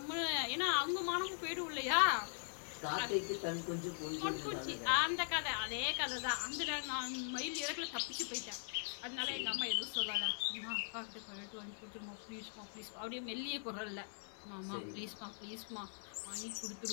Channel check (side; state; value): right; silent; digital silence